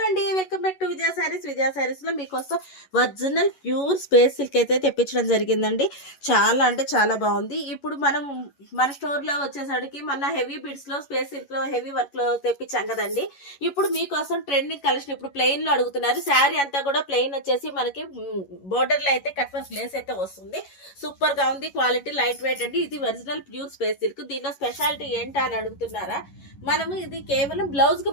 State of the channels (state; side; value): late; right; 11 ms